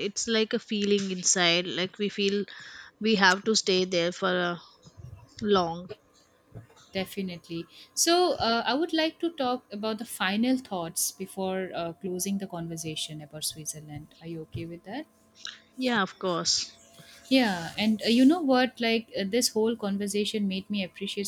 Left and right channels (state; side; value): identical; both; correlation 1.00